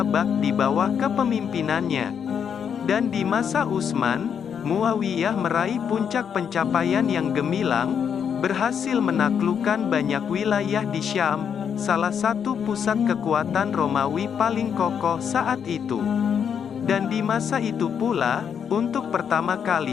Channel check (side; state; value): right; quieter; 7.6 dB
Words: di bawah kepemimpinannya. Dan di masa Utsman, Muawiyah meraih puncak pencapaian yang gemilang, berhasil menaklukkan banyak wilayah di Syam, salah satu pusat kekuatan Romawi paling kokoh saat itu. Dan di masa itu pula, untuk pertama